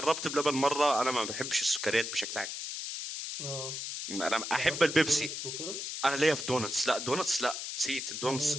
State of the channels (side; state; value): left; noise; hiss, 5 dB below the sound